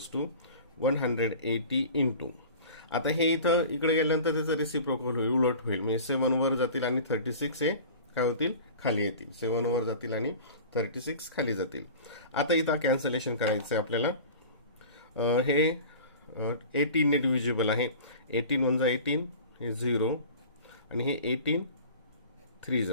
to 180 into. आता हे इथं इकडे गेल्यानंतर त्याचं रेसिप्रोकल होईल, उलट होईल. म्हणजे 7 वर जातील आणि 36 हे काय होतील खाली येतील. 7 वर जातील आणि 36 खाली जातील. आता इथं कॅन्सलेशन करायचं आहे आपल्याला. हे 18 ने डिव्हिजिबल आहे. 18 × 1 = 18 हे 0 आणि हे 18 3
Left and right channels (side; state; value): both; inverted; correlation -0.39